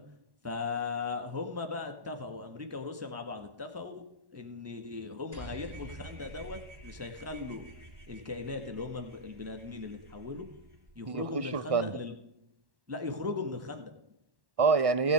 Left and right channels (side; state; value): left; late; 1.1 ms